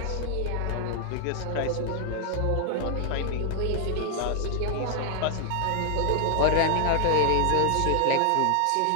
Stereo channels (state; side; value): different; both; correlation 0.00